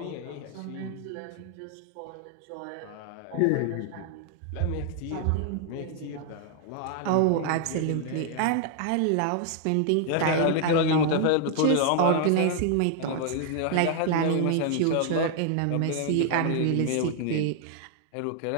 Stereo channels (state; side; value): different; both; correlation 0.00